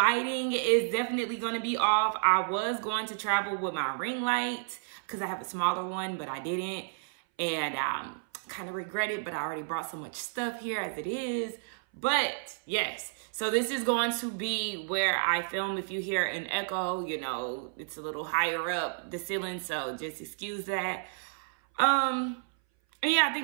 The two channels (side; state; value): left; silent; 57 dB below the other